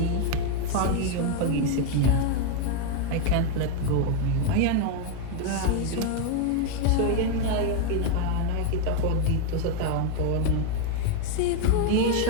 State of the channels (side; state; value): both; different; correlation 0.01